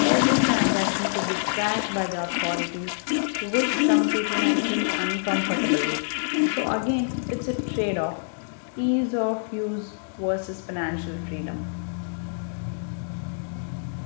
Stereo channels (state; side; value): silent; right; digital silence